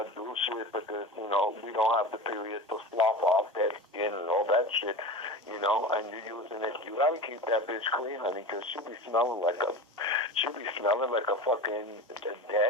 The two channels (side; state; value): both; normal; correlation 0.30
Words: do shit because, you know, we don't have the period to slop off that skin and all that shit, you know, and you're using it. You gotta keep that bitch clean, honey, because she be smelling like a fucking